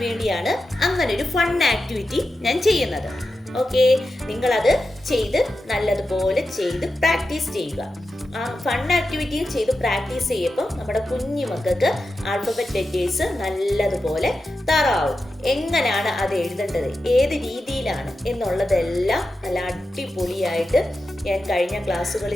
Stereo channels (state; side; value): normal; both; correlation 0.91